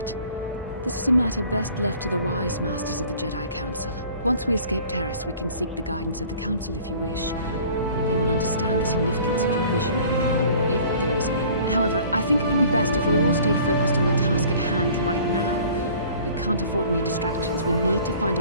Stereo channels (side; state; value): both; inverted; correlation -0.49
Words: This is a matter best left to the wise masters of the Jedi Council. Once we escape Terrace, we can seek the guidance of the Council if you wish. They will understand the significance of your vision, if there is any. However, I think it would be best if we all stayed focused on the task at hand right now. We can't afford any distractions. We need to find